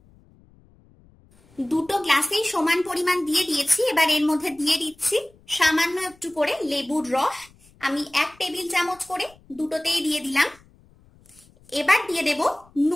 দুটো গ্লাসেই সমান পরিমাণ দিয়ে দিয়েছি। এবার এর মধ্যে দিয়ে দিচ্ছি সামান্য একটু করে লেবুর রস। আমি 1 টেবিল চামচ করে দুটোতেই দিয়ে দিলাম। এবার দিয়ে দেব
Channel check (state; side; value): noise; left; rumble, 29 dB below the sound